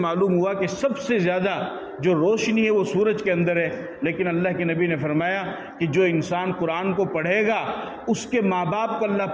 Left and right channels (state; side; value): identical; both; correlation 1.00